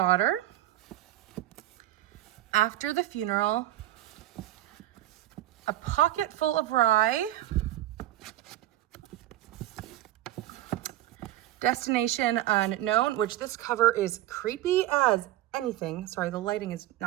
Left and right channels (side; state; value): left; quieter; 14.3 dB